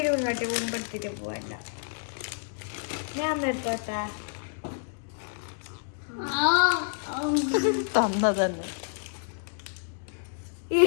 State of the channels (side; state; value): right; silent; digital silence